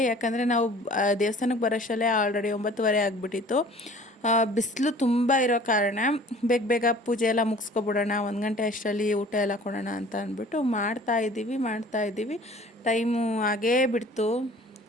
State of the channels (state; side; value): normal; both; correlation 0.48